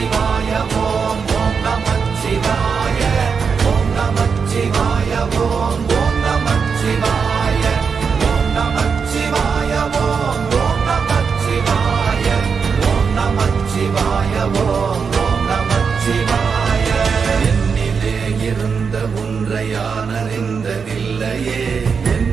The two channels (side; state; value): left; quieter; 5.8 dB